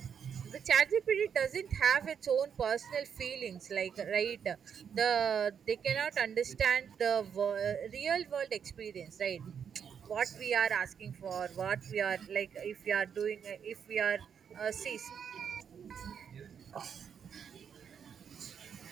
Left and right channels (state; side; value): quieter; left; 7.5 dB